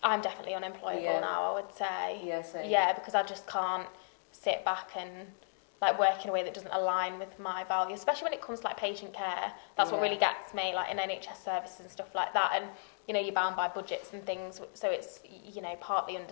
I'm definitely unemployable now, I would say. Yeah, same. Yeah, because I just can't sit back and like work in a way that doesn't align with my values, especially when it comes to like patient care. That's what really gets me, like in NHS services and stuff like that. And you know, you're bound by budgets and things, so it's, you know, partly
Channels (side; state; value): right; silent; digital silence